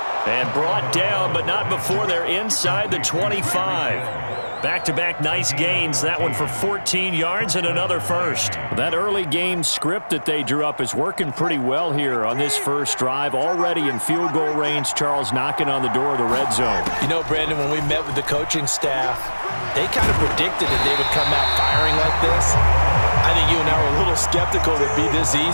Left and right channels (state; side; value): inverted; both; correlation -1.00